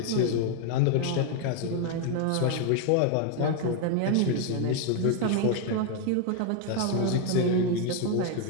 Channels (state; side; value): different; both; correlation 0.01